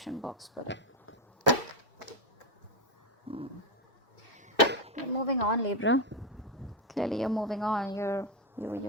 box below. You're moving on, Libra. Clearly, you're moving on.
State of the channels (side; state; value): both; normal; correlation 0.07